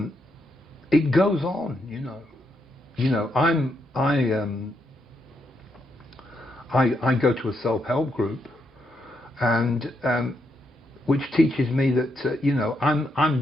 it goes on. You know, I go to a self-help group, and which teaches me that you know, I'm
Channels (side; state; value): both; normal; correlation 0.79